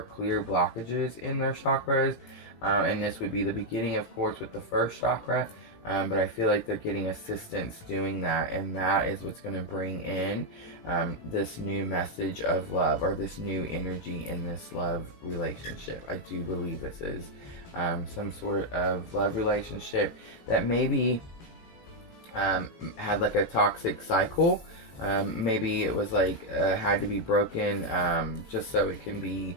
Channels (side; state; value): right; late; 18 ms